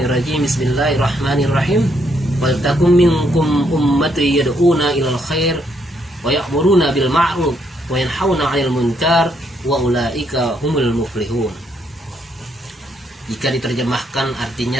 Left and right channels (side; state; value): both; normal; correlation 0.74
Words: Bismillahirrahmanirrahim. Wal takum minkum ummati yad'una ilal khair wa ya'muruna bil ma'ruf wa yanhauna 'anil munkar wa ulaika humul muflihun. Jika diterjemahkan